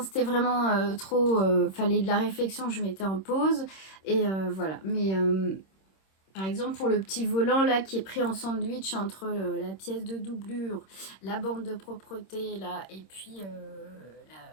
c'était vraiment trop... fallait de la réflexion, je mettais en pause. Et voilà. Mais... par exemple, pour le petit volant là qui est pris en sandwich entre la pièce de doublure, la bande de propreté là, et puis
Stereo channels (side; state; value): right; late; 26 ms